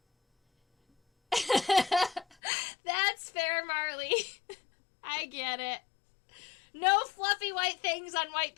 That's fair, Marley. I get it. No fluffy white things on white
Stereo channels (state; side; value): drops out; right; at 2.4 s